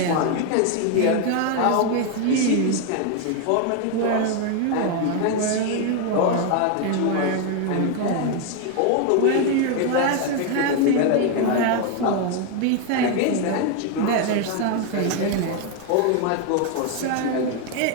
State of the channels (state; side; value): different; both; correlation 0.01